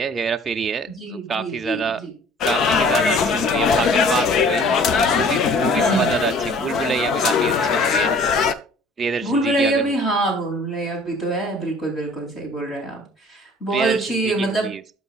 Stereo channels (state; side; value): normal; both; correlation 0.51